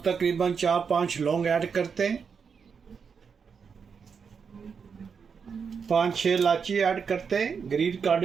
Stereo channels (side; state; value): left; quieter; 6.1 dB